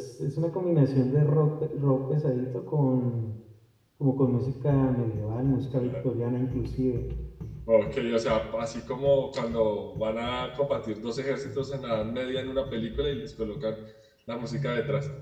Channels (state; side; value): identical; both; correlation 1.00